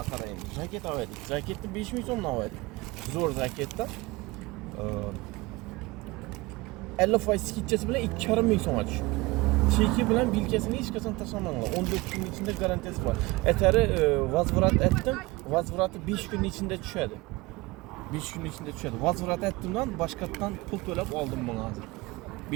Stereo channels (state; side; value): quieter; left; 22.3 dB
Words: endi. Jaket alıyorduk. Jaketni 5000 so'mdan alıyorduk. Zo'r jaketdan. 50% skitchasi bilan 2,5 so'mga tushdi. Cheki bilan bilkasini hech qachon tashlamanglar. 14 kun ichida garantiyasi bor. Etari vazvrat etdim. Vazvrati 5 kun ichida tushadi. 5 kun ichida tushadi. Vazvrat etdimdan boshqatdan pul to'lab oldim buni hozir.